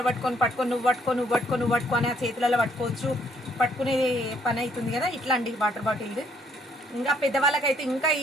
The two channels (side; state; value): both; normal; correlation 0.67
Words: పట్టుకొని నువ్వు పట్టుకో అని ఆ చేతులలో పట్టుకోవచ్చు. పట్టుకునే పని అవుతుంది కదా. ఇట్లా అండి వాటర్ బాటిల్. ఇంకా పెద్దవాళ్ళకైతే ఇంకా